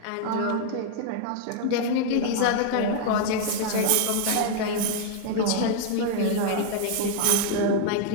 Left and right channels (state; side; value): different; both; correlation 0.00